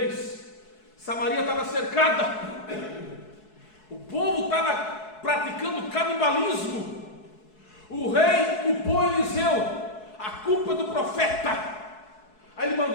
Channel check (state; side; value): late; right; 4.7 ms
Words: Samaria estava cercada, o povo estava praticando canibalismo. O rei culpou Eliseu, a culpa é do profeta. Aí ele